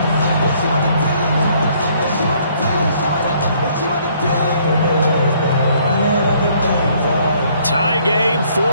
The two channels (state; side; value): inverted; both; correlation -0.64